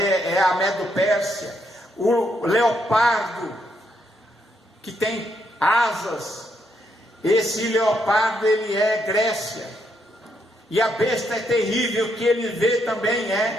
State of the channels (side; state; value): both; normal; correlation 0.76